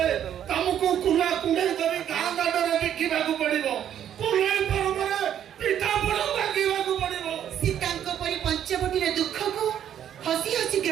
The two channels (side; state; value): left; quieter; 10.0 dB